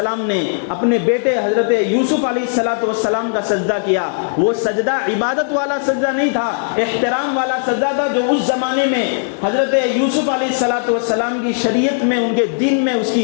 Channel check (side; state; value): right; silent; 68 dB below the other